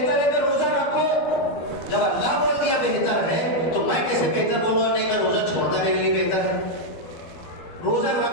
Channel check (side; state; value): right; late; 12 ms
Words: ہے کہ روزہ رکھو. جب اللہ بول دیا بہتر ہے تو میں کیسے بہتر بولوں نہیں کہ روزہ چھوڑنا میرے لیے بہتر ہے؟ روزہ